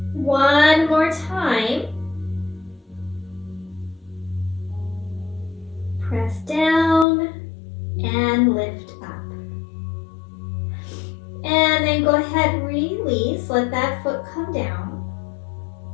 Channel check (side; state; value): right; drops out; at 7.1 s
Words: One more time. Press down and lift up. And then go ahead, release, let that foot come down.